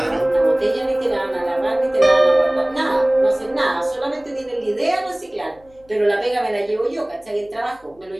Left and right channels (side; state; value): left; noise; hum, 29 dB below the sound